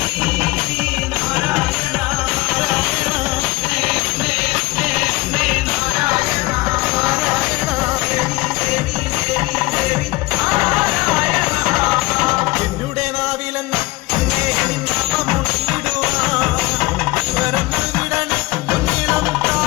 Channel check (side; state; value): right; quieter; 21.4 dB